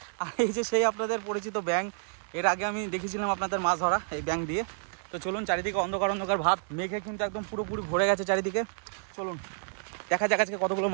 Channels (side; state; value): left; silent; 58 dB below the other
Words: আর এই যে সেই আপনাদের পরিচিত ব্যাঙ। এর আগে আমি দেখেছিলাম আপনাদের মাছ ধরা এই ব্যাঙ দিয়ে। তো চলুন, চারিদিকে অন্ধকার অন্ধকার ভাব, মেঘে কিন্তু একদম পুরোপুরি ভরে গেছে চারিদিকে। চলুন দেখা যাক আজকে কতগুলো